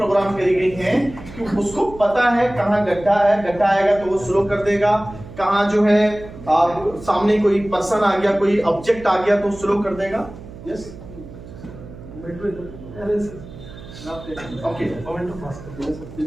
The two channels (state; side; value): noise; right; hum, 16 dB below the sound